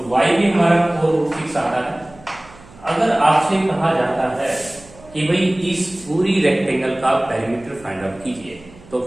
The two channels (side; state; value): right; noise; hum, 23 dB below the sound